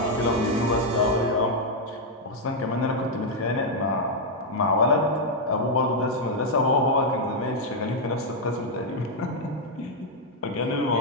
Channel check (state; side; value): normal; both; correlation -0.02